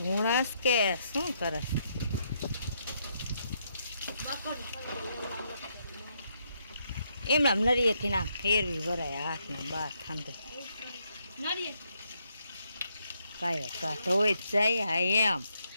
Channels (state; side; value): inverted; both; correlation -0.76